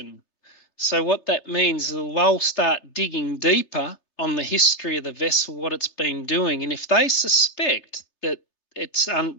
So what that means is they'll start digging deeper on the history of the vessel, what it's been doing. And if they suspect that it's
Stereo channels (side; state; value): right; late; 3.3 ms